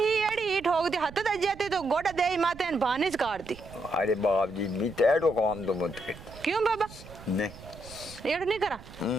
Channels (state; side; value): noise; right; rumble, 17 dB below the sound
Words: एड़ी ठोक दी हाथ दे जाती तो गोड़ा दे माते न भानिज काटती अरे बाप जी भी तेड़ो काम तो मत कर क्यों बाबा नहीं एड़ नहीं करा